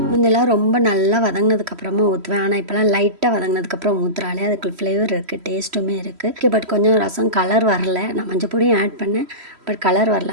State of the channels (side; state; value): left; late; 3.1 ms